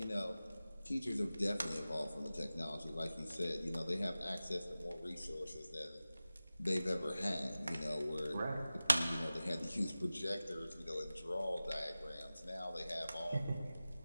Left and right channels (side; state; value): both; inverted; correlation -0.96